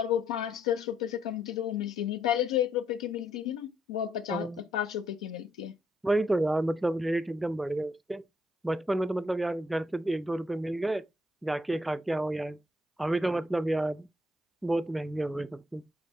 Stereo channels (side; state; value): both; normal; correlation 0.74